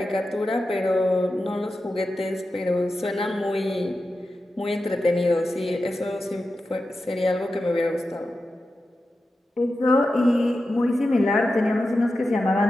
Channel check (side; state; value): both; normal; correlation 0.91